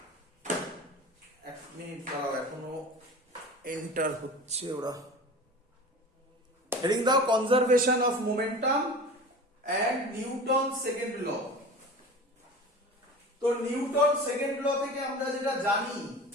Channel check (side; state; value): both; normal; correlation 0.36